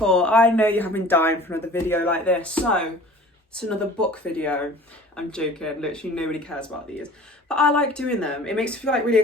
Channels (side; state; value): both; normal; correlation 0.45